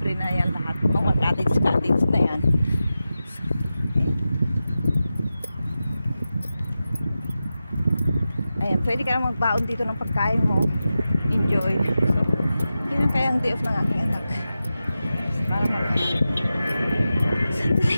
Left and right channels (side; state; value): both; inverted; correlation -0.92